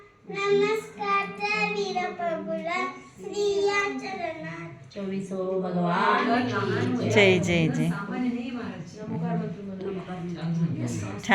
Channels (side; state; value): both; identical; correlation 1.00